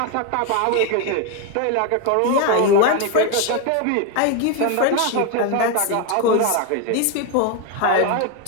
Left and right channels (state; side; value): different; both; correlation 0.02